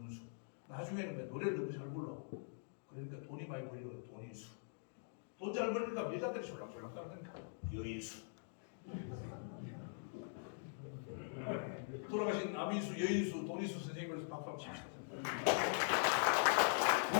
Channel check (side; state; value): right; silent; digital silence